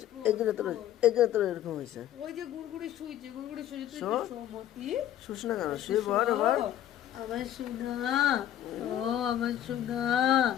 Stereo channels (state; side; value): quieter; right; 11.7 dB